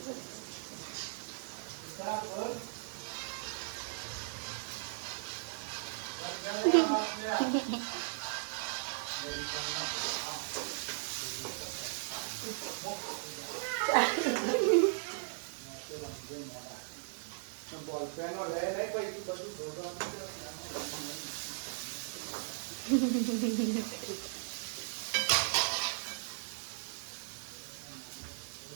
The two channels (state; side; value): silent; left; digital silence